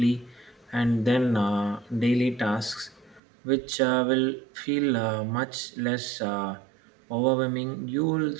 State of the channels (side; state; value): left; drops out; at 3.2 s